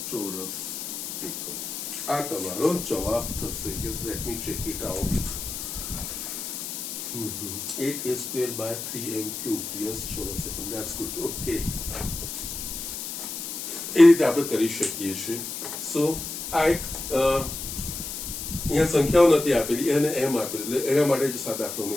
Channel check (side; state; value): left; noise; hiss, 6 dB below the sound